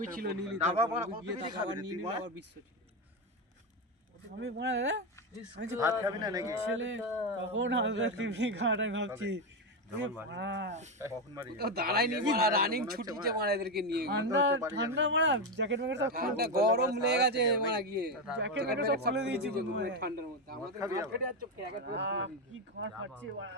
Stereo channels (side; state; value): both; normal; correlation 0.10